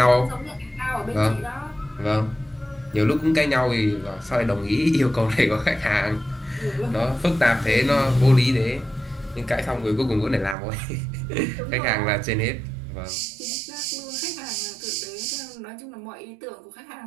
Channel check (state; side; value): drops out; left; at 10.6 s